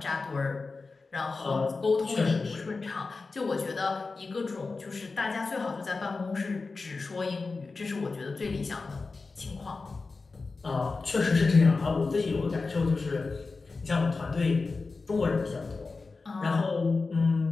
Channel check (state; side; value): quieter; right; 4.0 dB